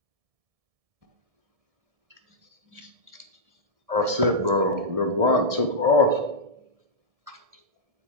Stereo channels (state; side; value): late; left; 1.7 ms